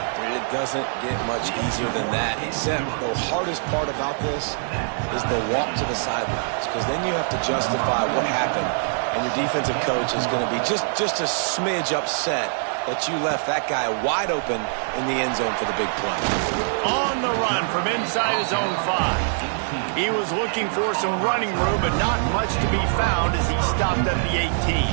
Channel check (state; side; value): silent; left; digital silence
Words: It doesn't get much easier than that, except the hardest part about this is the walk to the sidelines, because then you have to justify what happened, and your defensive coach is going to be just a smidge upset that you left that guy wide open in the end zone for the big play. On the run from inside his own 5. He was looking for some running room, but not much to be found as he stopped at the 18.